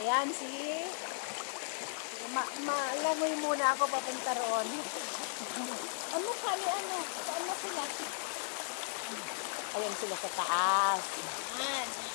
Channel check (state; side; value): silent; right; digital silence